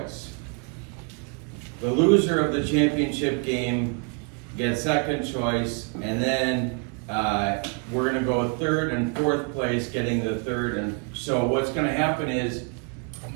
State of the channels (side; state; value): left; quieter; 35.0 dB